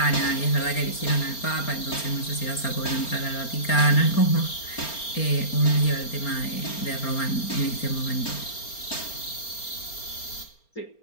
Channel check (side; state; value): right; late; 4.3 ms